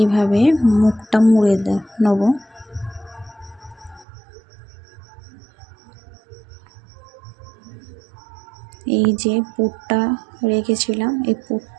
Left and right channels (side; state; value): left; drops out; at 4.0 s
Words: মুখটা মুড়ে নেব। এই যে পুরটা রেখেছিলাম, এই